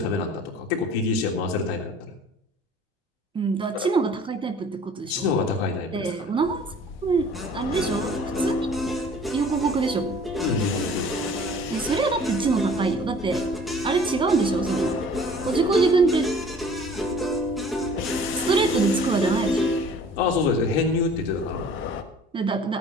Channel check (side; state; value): both; normal; correlation 0.50